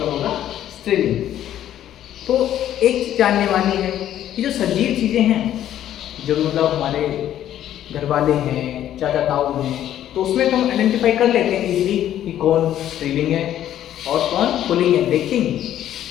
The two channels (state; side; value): quieter; right; 11.6 dB